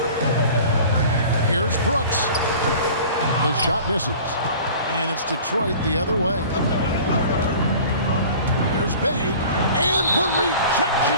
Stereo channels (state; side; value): inverted; both; correlation -0.43